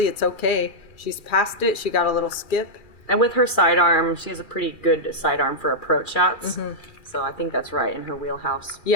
it's okay. She's past it. She got a little skip. And with her sidearm, she has a pretty good sidearm for approach shots. So I think that's right in her wheelhouse.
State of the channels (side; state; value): right; late; 2.4 ms